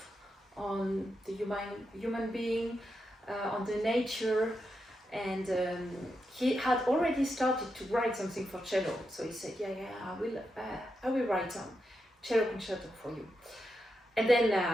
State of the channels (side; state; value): both; normal; correlation 0.86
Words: on the human being, on the nature. And he had already started to write something for cello, so he said, I will write some cello concerto for you. And